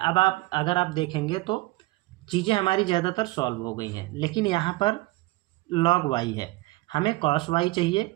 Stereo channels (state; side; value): quieter; left; 20.4 dB